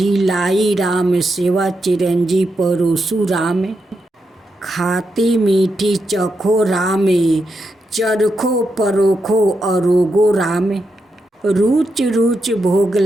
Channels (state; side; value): normal; both; correlation 0.85